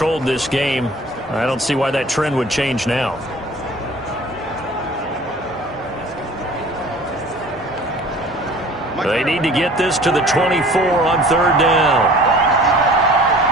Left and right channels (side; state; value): both; normal; correlation 0.47